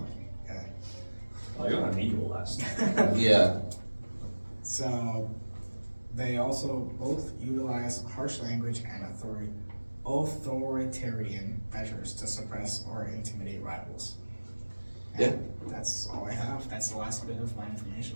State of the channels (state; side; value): inverted; both; correlation -1.00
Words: I got an eagle last night. Yeah. So they also both utilize harsh language and authoritarian measures to suppress or intimidate rivals. And that's all I have. That's the last bit of my information.